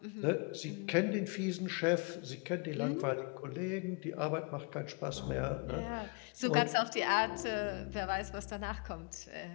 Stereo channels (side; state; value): right; quieter; 32.3 dB